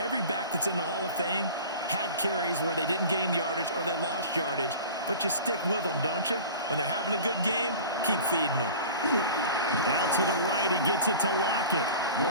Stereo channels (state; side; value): inverted; both; correlation -0.39